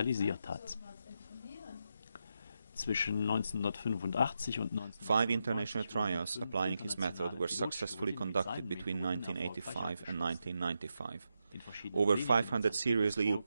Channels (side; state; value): both; inverted; correlation -0.85